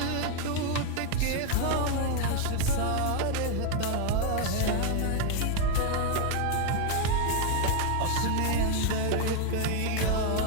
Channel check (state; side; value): different; both; correlation 0.00